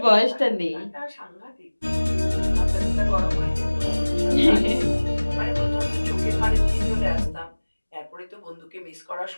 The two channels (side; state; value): both; inverted; correlation -1.00